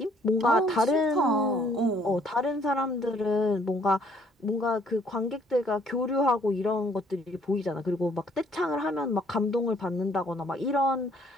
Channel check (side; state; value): both; normal; correlation 0.63